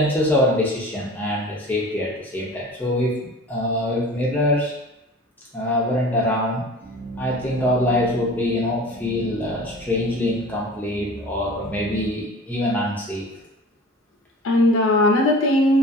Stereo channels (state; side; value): normal; both; correlation 0.40